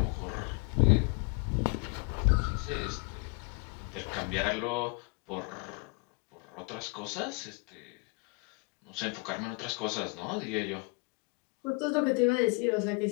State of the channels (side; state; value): right; quieter; 31.3 dB